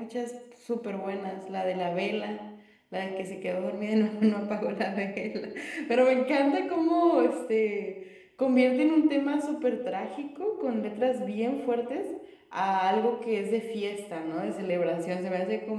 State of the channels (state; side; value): identical; both; correlation 1.00